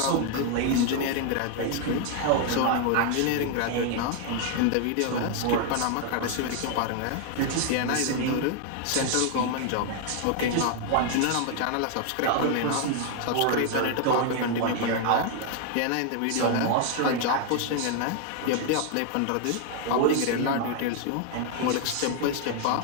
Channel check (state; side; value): different; both; correlation 0.00